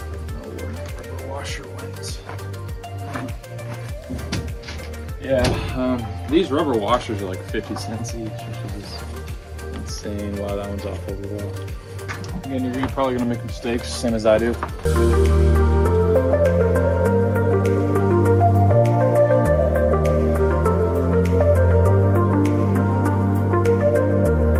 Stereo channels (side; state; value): both; identical; correlation 1.00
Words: Yeah, these rubber washers are like 50 cents each, which is insane. Wow, that one's off over well. Again, you're probably gonna make mistakes, same as I do.